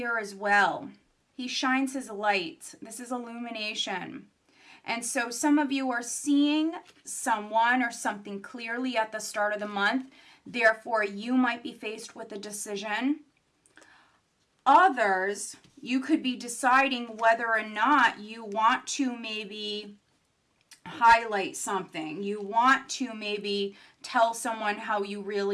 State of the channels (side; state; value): both; identical; correlation 1.00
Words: as well. He shines his light. This is illumination. And so some of you are seeing someone or something clearly at the start of the month. Therefore, you might be faced with a decision. Others, you could be deciding whether or not you want to maybe highlight something. You want to maybe tell someone how you